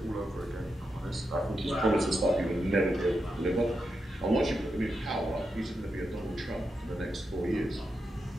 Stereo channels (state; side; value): normal; both; correlation 0.86